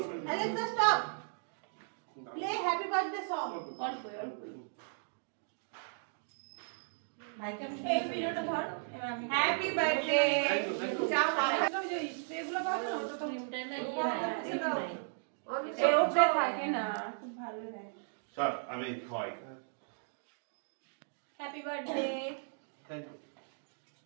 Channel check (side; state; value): left; silent; digital silence